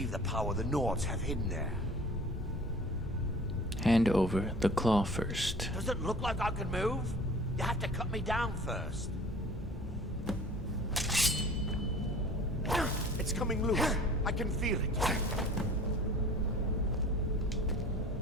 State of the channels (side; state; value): both; normal; correlation 0.45